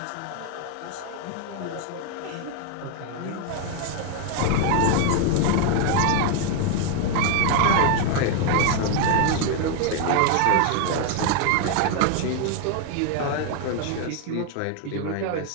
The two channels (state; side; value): different; both; correlation 0.01